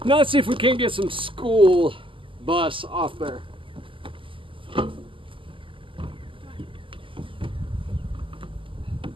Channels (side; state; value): left; late; 0.25 ms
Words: Now let's see if we can get some school bus off there.